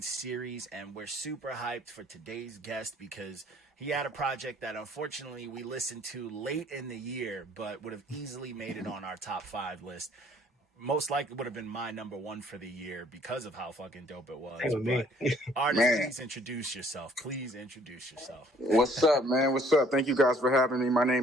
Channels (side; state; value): both; normal; correlation 0.59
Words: series. And we're super hyped for today's guest because he had a project that unfortunately we listened to late in the year, but would have easily made it on our top 5 list. Most likely would have been my number 1 for the year because of how fucking dope it was. But artist, please introduce yourself. Please introduce yourself. What's up, man? What's up? Thank you guys for having me. My